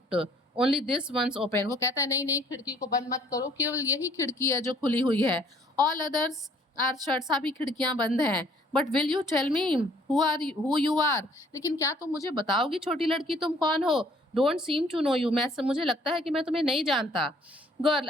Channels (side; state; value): both; normal; correlation 0.60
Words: only this once open. वो कहता है नहीं नहीं, खिड़की को बंद मत करो, केवल यही खिड़की है जो खुली हुई है. ऑल अदर्स आर शट, सभी खिड़कियां बंद हैं. But will you tell me who you are, लेकिन क्या तुम मुझे बताओगी छोटी लड़की तुम कौन हो. Don't seem to know you, मुझे लगता है कि मैं तुम्हें नहीं जानता. Girl,